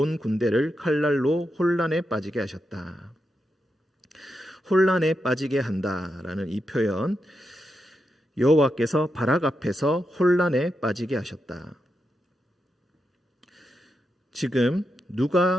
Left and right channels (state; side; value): normal; both; correlation 0.86